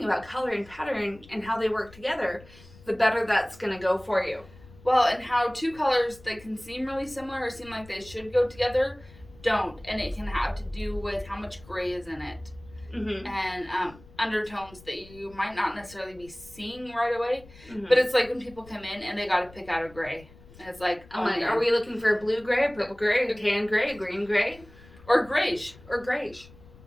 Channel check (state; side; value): noise; left; rumble, 22 dB below the sound